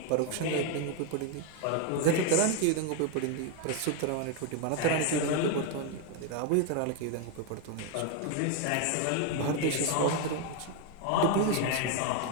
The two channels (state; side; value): different; both; correlation 0.01